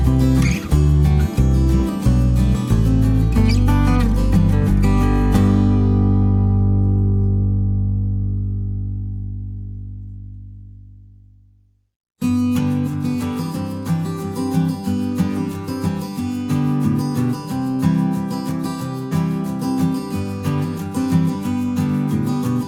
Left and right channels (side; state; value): both; identical; correlation 1.00